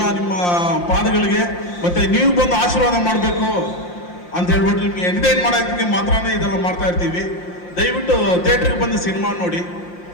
ನಿಮ್ಮ ಪಾದಗಳಿಗೆ, ಮತ್ತು ನೀವು ಬಂದು ಆಶೀರ್ವಾದ ಮಾಡಬೇಕು ಅಂತ ಹೇಳ್ಬಿಟ್ಟು ನಿಮಗೆ ಎಂಟರ್ಟೈನ್ ಮಾಡೋದಕ್ಕೆ ಮಾತ್ರನೇ ಇದೆಲ್ಲ ಮಾಡ್ತಾ ಇರ್ತೀವಿ. ದಯವಿಟ್ಟು ಥಿಯೇಟ್ರಿಗೆ ಬಂದು ಸಿನಿಮಾ ನೋಡಿ.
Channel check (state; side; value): late; right; 5.7 ms